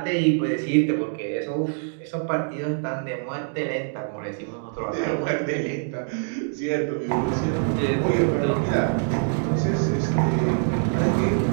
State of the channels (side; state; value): left; silent; digital silence